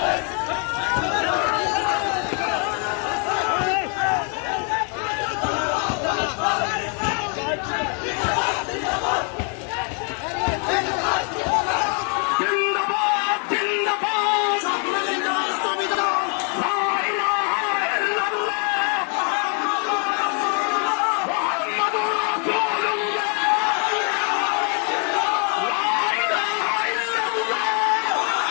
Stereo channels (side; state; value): right; quieter; 37.6 dB